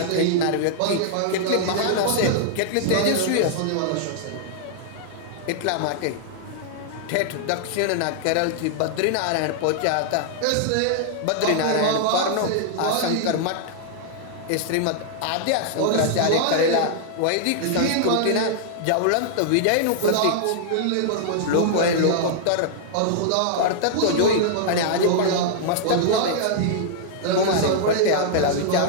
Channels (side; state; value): both; different; correlation -0.01